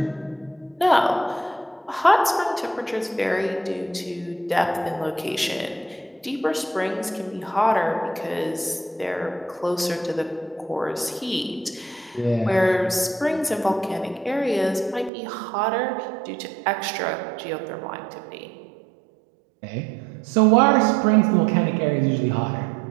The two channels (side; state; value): left; drops out; at 15.1 s